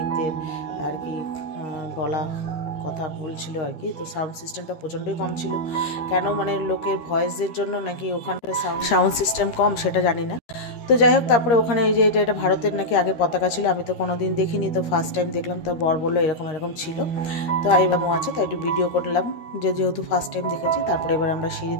আর কি বলা কথা বলছিল আর কি। তো সাউন্ড সিস্টেমটা প্রচণ্ডই কম ছিল, কেন মানে লোকের ভয়েসের জন্য নাকি ওখানকার সাউন্ড সিস্টেম কম, সেটা জানি না। তো যাই হোক, তারপরে ওখানে এই যে এটা ভারতের নাকি আগে পতাকা ছিল, আমি তো কোনোদিন দেখিনি, তো ফার্স্ট টাইম দেখলাম। তো বর বললো এরকম এরকম ছিল। তো আইবামও আছে, তাই একটু ভিডিও করলাম, যেহেতু ফার্স্ট টাইম দেখেছি। তারপরে এবার আমরা সিঁড়ি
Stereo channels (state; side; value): late; right; 13 ms